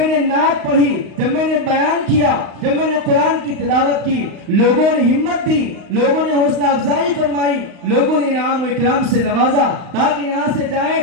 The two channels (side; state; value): left; late; 35 ms